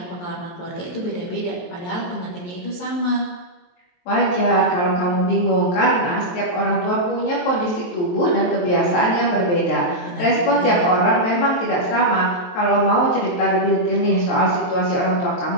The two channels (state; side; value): late; right; 23 ms